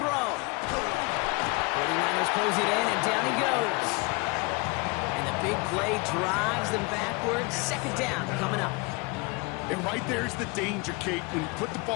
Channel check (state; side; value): quieter; right; 27.5 dB